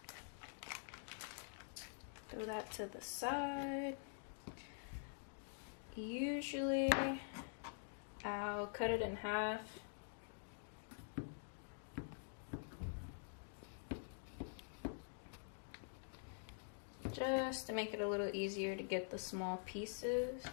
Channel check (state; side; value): silent; right; digital silence